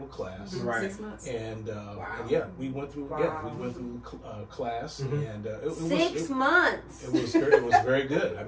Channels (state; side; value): identical; both; correlation 1.00